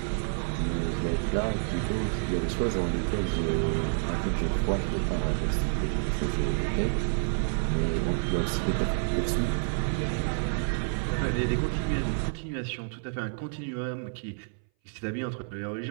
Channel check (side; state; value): left; silent; 59 dB below the other